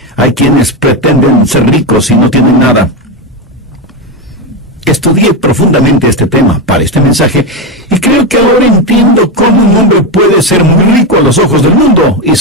hay quienes pretenden ser ricos y no tienen nada? Estudié profundamente este tema para este mensaje y creo que ahora entiendo cómo un hombre puede ser muy rico a los ojos del mundo y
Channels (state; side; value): normal; both; correlation 0.11